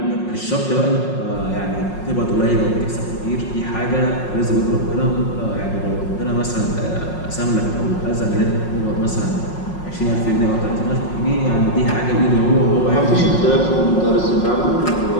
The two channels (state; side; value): late; right; 5.5 ms